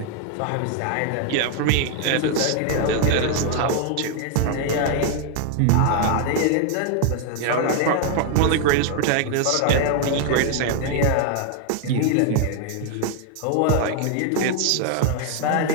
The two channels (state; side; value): different; both; correlation 0.00